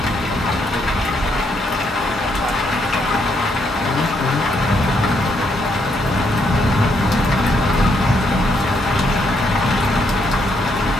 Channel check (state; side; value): normal; both; correlation 0.75